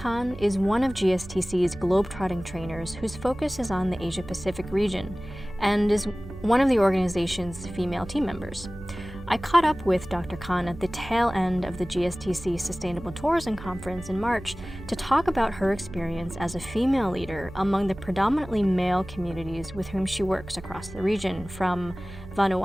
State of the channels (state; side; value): noise; right; hum, 15 dB below the sound